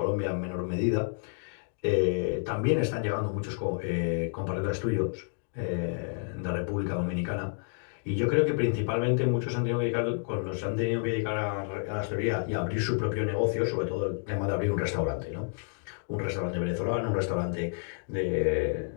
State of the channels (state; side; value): silent; right; digital silence